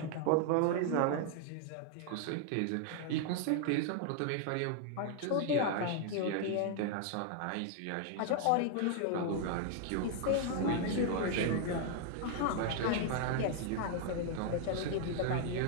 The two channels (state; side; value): different; both; correlation 0.00